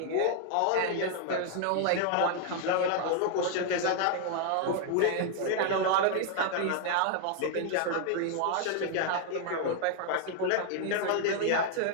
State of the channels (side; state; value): both; different; correlation 0.00